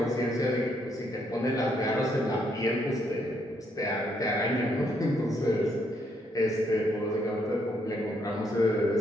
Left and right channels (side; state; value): both; normal; correlation 0.73